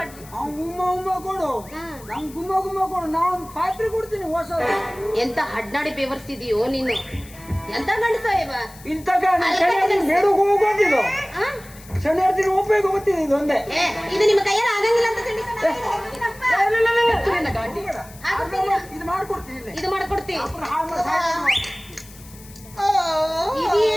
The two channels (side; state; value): left; noise; hiss, 21 dB below the sound